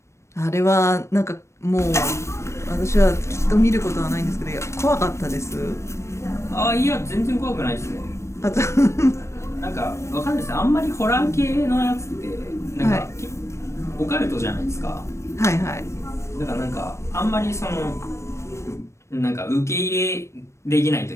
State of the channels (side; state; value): right; late; 0.13 ms